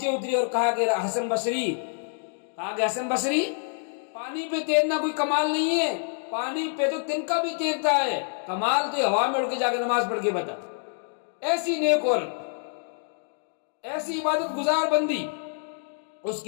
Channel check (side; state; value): right; silent; 57 dB below the other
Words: اتری اور کہا کہ حسن بصری پانی پہ تیرنا کوئی کمال نہیں ہے، پانی پہ تو تنکا بھی تیرتا ہے، کمال تو ہوا میں اڑ کے جا کے نماز پڑھ کے بتا۔ ایسی نیک عورت، ایسی عبادت گزار بندی، اس